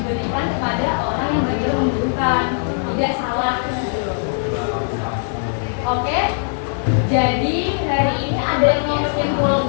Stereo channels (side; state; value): right; silent; digital silence